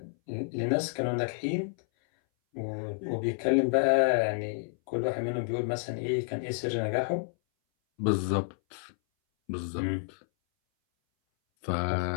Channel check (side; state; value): right; silent; 58 dB below the other